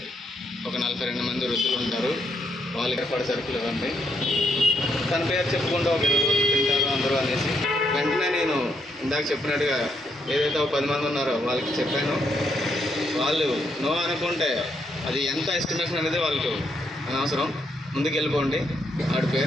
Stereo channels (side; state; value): both; normal; correlation 0.77